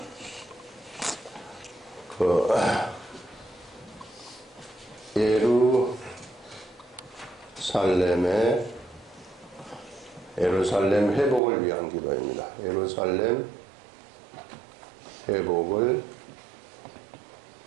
예루살렘 회복을 위한 기도입니다. 예루살렘 회복을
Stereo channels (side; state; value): left; drops out; at 11.4 s